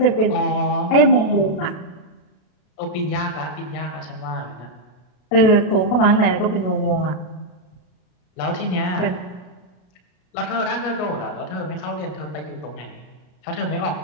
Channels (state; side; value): late; right; 33 ms